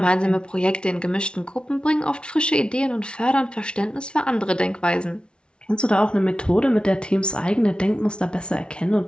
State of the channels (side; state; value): right; late; 0.056 ms